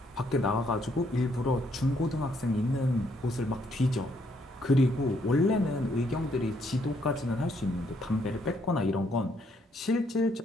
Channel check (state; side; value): normal; both; correlation 0.71